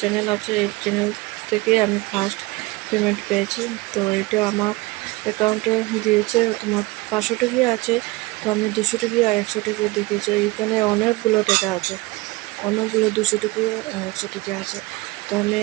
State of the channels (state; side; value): quieter; left; 21.9 dB